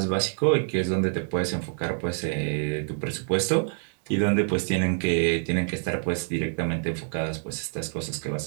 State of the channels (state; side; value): silent; left; digital silence